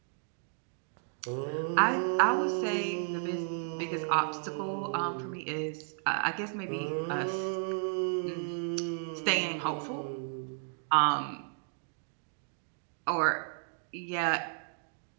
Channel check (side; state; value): left; silent; 56 dB below the other